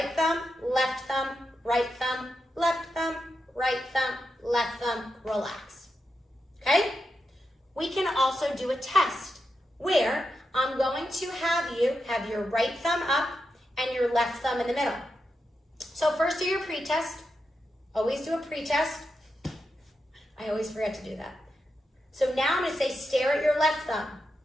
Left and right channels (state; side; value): normal; both; correlation 0.87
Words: thumb, left thumb, right thumb, left thumb, right thumb, left thumb, relax. Okay? We can also do a test where I'm going to have you have your right thumb up and your left thumb in the middle. So first do your pre-test. Always do a pre-test. I always forget to do that. So now I'm going to say stare at your left thumb.